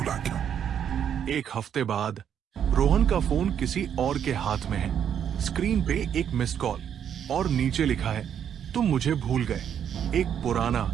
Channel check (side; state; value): left; quieter; 8.8 dB